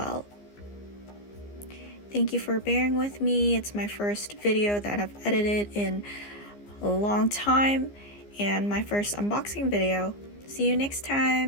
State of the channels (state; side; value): late; right; 15 ms